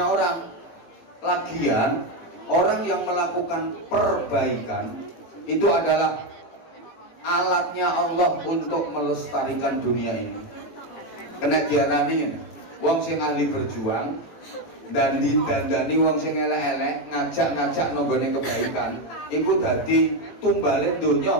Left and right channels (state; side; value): late; right; 18 ms